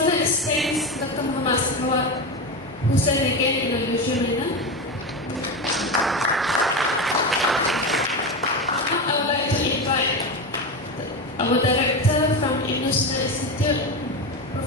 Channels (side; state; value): both; normal; correlation 0.19